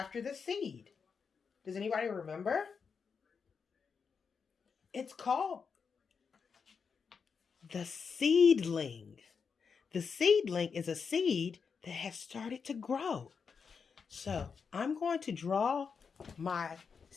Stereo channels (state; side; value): quieter; right; 5.8 dB